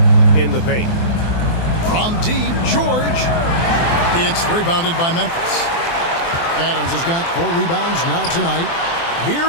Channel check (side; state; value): right; late; 24 ms